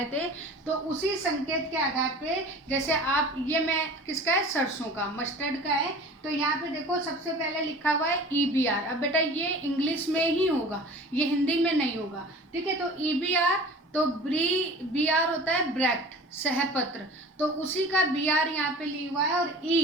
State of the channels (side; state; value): both; normal; correlation 0.41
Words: थे, तो उसी संकेत के आधार पे, जैसे आप, ये मैं किसका है? सरसों का, मस्टर्ड का है। तो यहाँ पे देखो, सबसे पहले लिखा हुआ है EBR। अब बेटा ये इंग्लिश में ही होगा, ये हिंदी में नहीं होगा। ठीक है, तो EBR, तो BR होता है ब्रैक्ट, सहपत्र, तो उसी का BR यहाँ पे लिखा हुआ है। और